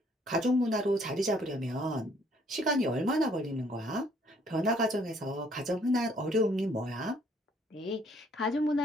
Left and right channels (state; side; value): normal; both; correlation 0.63